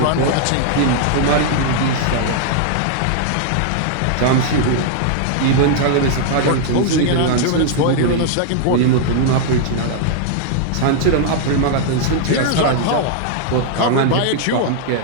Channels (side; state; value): both; different; correlation -0.01